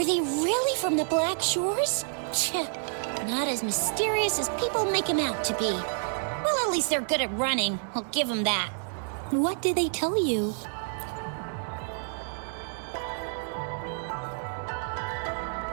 they really from the Black Shores? Not as mysterious as people make them out to be. Well, at least they're good at running. I'll give them that. What did they tell you?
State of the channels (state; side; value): silent; left; 59 dB below the other